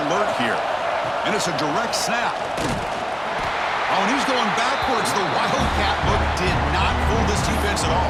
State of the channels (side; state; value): both; identical; correlation 1.00